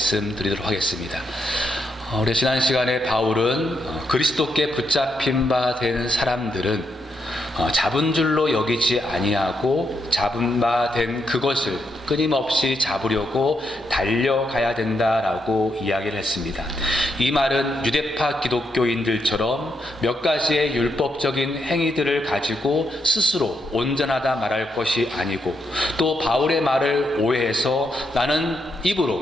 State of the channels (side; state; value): both; normal; correlation 0.80